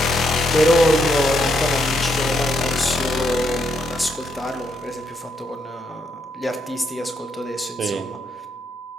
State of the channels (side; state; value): both; normal; correlation 0.76